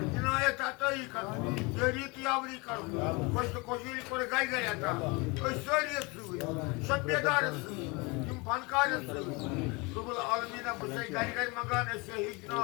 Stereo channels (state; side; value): quieter; right; 27.3 dB